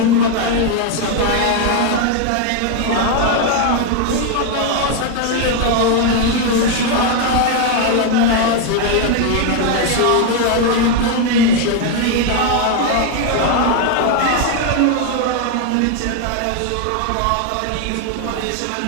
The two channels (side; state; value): both; different; correlation 0.01